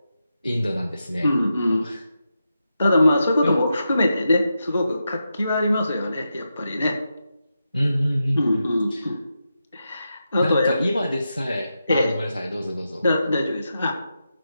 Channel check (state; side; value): inverted; both; correlation -0.88